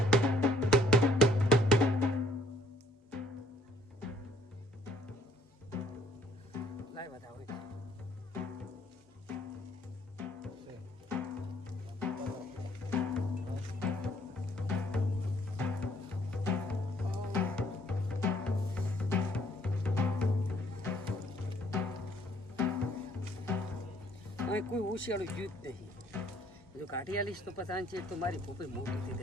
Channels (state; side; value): normal; both; correlation 0.62